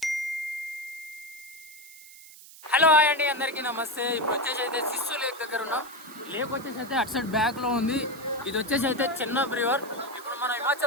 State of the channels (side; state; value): right; noise; hiss, 19 dB below the sound